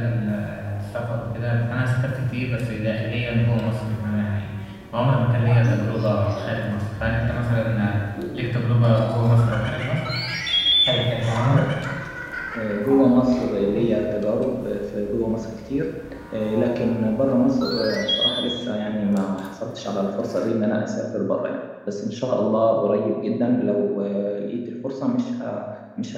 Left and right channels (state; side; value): identical; both; correlation 1.00